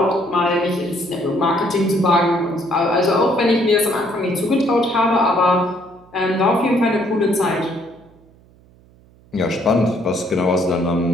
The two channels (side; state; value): right; noise; hum, 28 dB below the sound